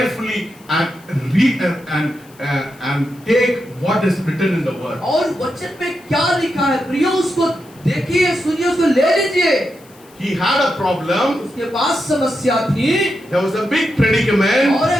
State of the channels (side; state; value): left; noise; hiss, 27 dB below the sound